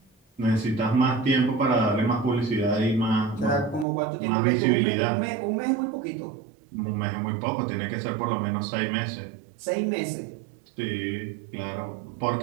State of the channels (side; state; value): left; drops out; at 3.9 s